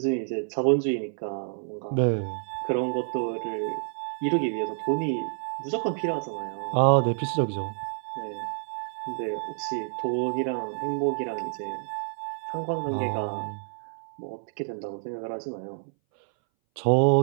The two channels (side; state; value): left; silent; 59 dB below the other